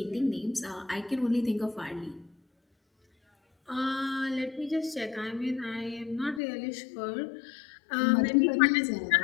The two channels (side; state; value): right; drops out; at 6.4 s